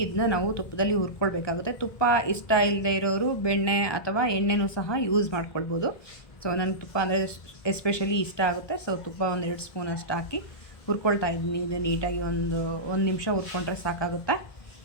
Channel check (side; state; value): right; late; 1.2 ms